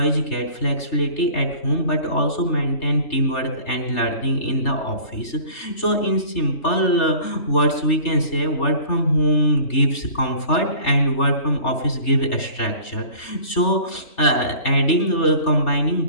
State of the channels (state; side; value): late; right; 3.3 ms